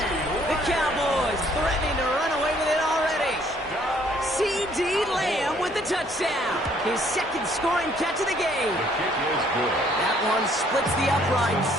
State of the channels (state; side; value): normal; both; correlation 0.63